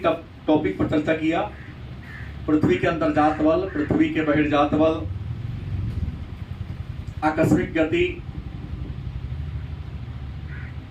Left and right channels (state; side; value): identical; both; correlation 1.00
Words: पर चर्चा किया। पृथ्वी के अंतर्जात बल, पृथ्वी के बहिर्जात बल, आकस्मिक गति,